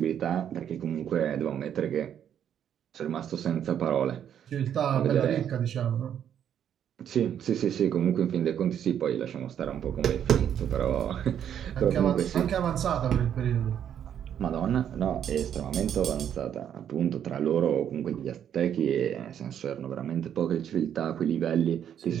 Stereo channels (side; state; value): left; quieter; 9.3 dB